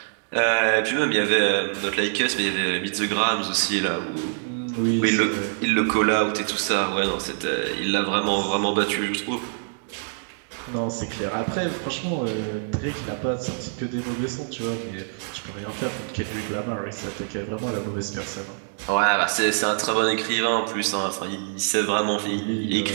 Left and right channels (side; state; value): left; silent; digital silence